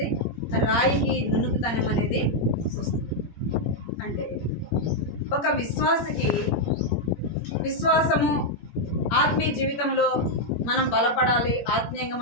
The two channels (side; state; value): right; late; 17 ms